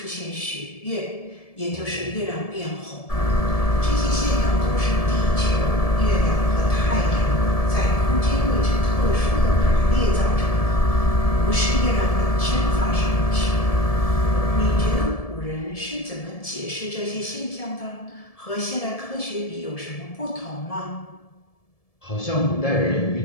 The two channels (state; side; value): late; right; 1.7 ms